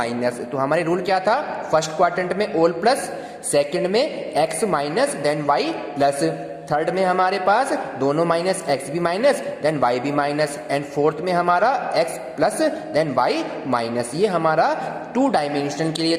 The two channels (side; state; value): both; identical; correlation 1.00